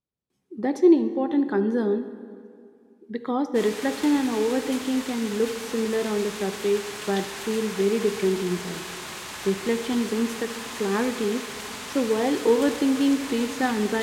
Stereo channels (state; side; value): identical; both; correlation 1.00